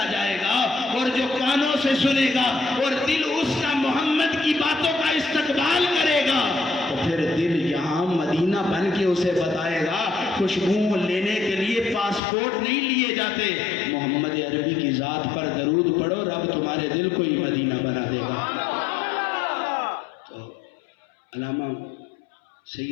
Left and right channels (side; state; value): right; drops out; at 12.2 s